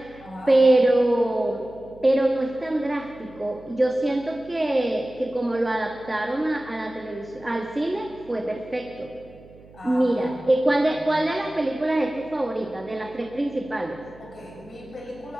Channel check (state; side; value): noise; right; hum, 23 dB below the sound